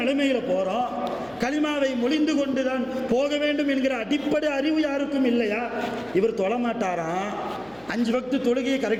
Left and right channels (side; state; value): left; noise; hum, 27 dB below the sound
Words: போகிறோம், கலிமாவை மொழிந்து கொண்டு தான் போக வேண்டும் என்கிற அடிப்படை அறிவு யாருக்கும் இல்லையா? இவர் தொழமாட்டாராம், 5 வக்து தொழுகையை